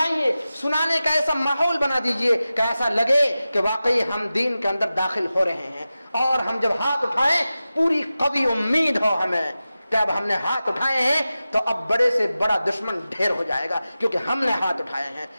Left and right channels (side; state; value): both; inverted; correlation -0.94